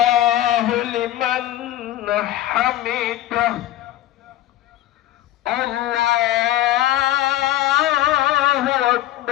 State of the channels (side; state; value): right; quieter; 13.9 dB